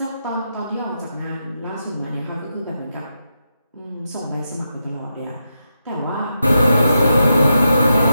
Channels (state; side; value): inverted; both; correlation -0.86